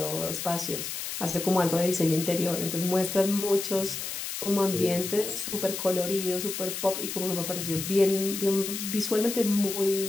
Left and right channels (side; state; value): left; noise; hiss, 5 dB below the sound